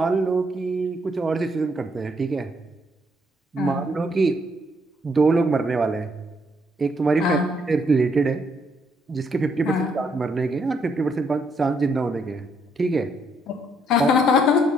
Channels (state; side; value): normal; both; correlation 0.72